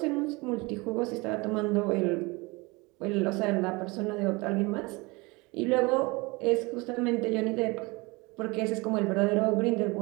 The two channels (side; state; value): left; quieter; 25.3 dB